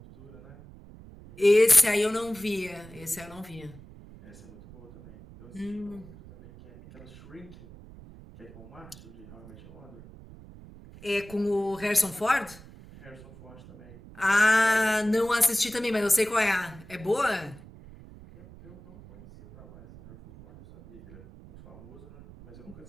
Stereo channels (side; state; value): right; noise; rumble, 20 dB below the sound